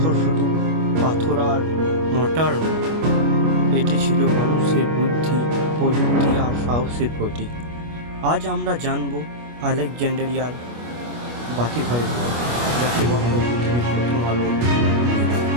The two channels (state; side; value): late; left; 25 ms